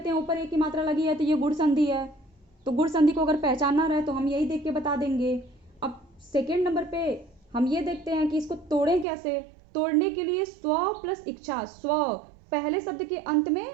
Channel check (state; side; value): drops out; left; at 9.1 s